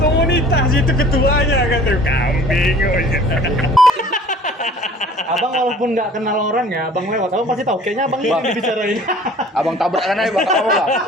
itu ketuanya kan tuh kambing. Abang walaupun nggak kenal orangnya, abang lewat, abang pasti tahu. Kayaknya abang ini yang dibicarain. Abang tabrakan aja bang, kamu bang.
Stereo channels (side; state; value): both; normal; correlation 0.49